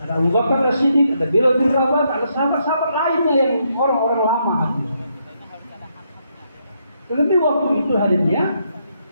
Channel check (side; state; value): both; inverted; correlation -0.77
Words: ada Abu Bakar As-Siddiq, ada Bilal bin Rabah, ada sahabat-sahabat lainnya yang orang-orang lama hadir. Tetapi waktu itu hadirnya